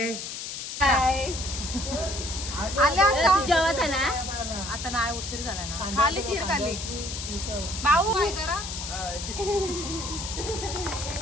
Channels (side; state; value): left; noise; hiss, 7 dB below the sound